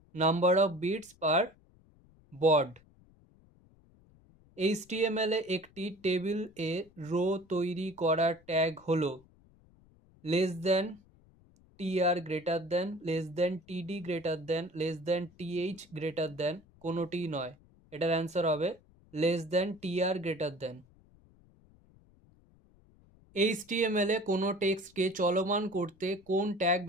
number of bits per বড। HTML এ একটি table a row তৈরি করার tag হলো less than, tr greater than, less than, td greater than, less than, th greater than, কোনোটি নয়। এটার answer হবে less than, tr greater than. HTML এ কোনো টেক্সটকে চলমান করতে কোন ট্যাগ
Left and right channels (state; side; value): noise; left; rumble, 28 dB below the sound